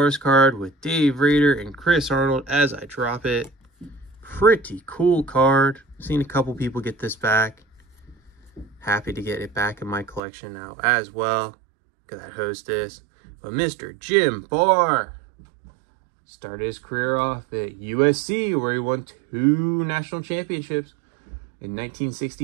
card with Dave Rader and Chris Arnold as I drop it. Pretty cool card. Seen a couple people get this back. Happy to get it back in my collection now as well, because I host this. But Mr. Jim Barr started his career off at USC, where he won 2 national championships in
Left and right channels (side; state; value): left; drops out; at 10.2 s